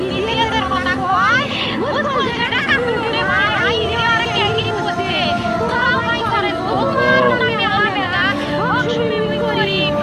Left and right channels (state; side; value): identical; both; correlation 1.00